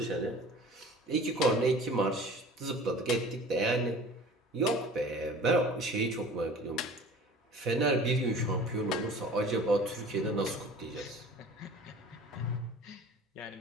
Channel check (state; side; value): normal; both; correlation 0.44